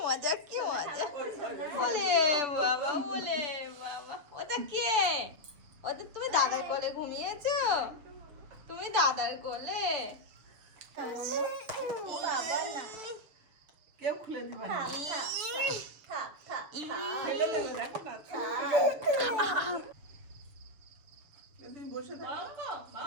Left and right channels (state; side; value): late; left; 6.6 ms